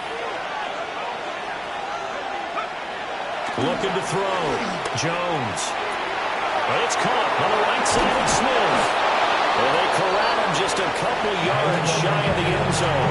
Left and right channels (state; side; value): identical; both; correlation 1.00